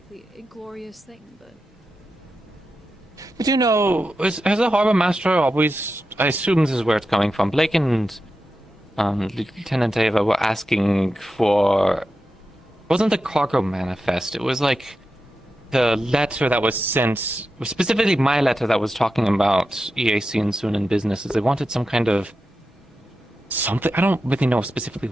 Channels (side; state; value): both; normal; correlation 0.90